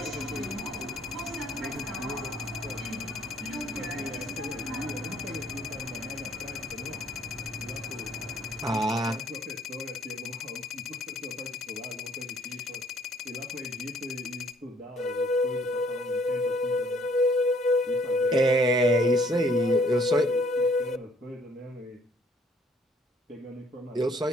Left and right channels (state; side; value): normal; both; correlation 0.61